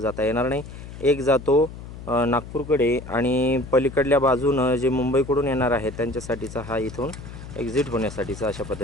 जाता येणार नाही. एक जातो नागपूरकडे आणि पलीकडल्या बाजूनं जे मुंबईकडून येणार आहे त्यांच्यासाठीचा हा इथून एक्झिट होण्यासाठीचा अशा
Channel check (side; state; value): left; noise; hum, 13 dB below the sound